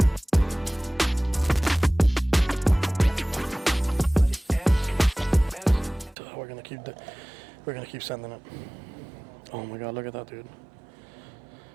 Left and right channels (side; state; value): left; drops out; at 6.2 s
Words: We're gonna keep sending it. Oh my god, look at that, dude.